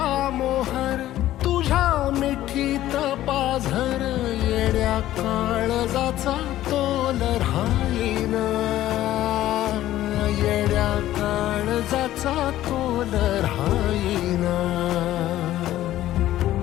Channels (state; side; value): quieter; right; 14.0 dB